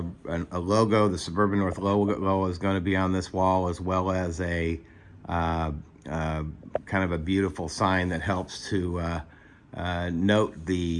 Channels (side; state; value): both; identical; correlation 1.00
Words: logo. The Suburban North logo is going to be on this wall, as well as a kind of a beautiful sign that helps to note